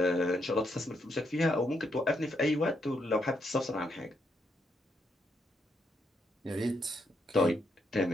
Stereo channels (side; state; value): both; normal; correlation 0.78